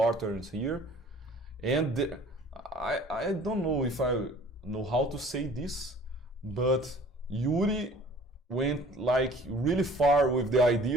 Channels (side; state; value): both; normal; correlation 0.50